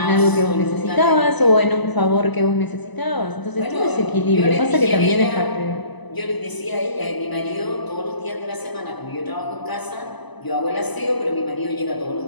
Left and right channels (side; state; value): right; late; 1.0 ms